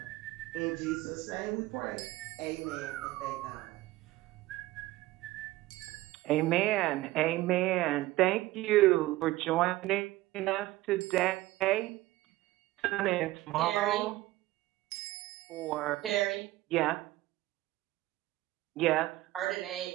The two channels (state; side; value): quieter; left; 17.8 dB